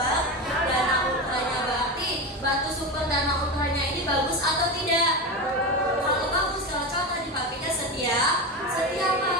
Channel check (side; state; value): both; normal; correlation 0.20